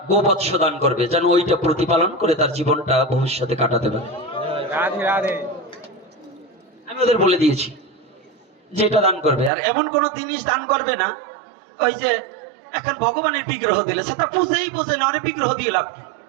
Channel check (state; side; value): drops out; left; at 9.5 s